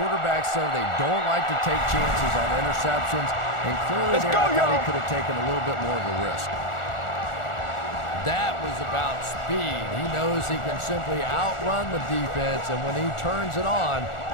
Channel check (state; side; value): late; right; 1.4 ms